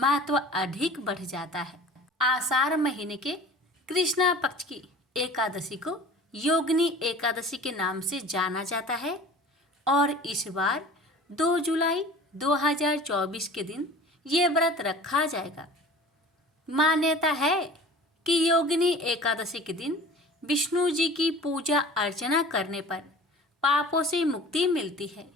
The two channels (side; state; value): both; normal; correlation 0.43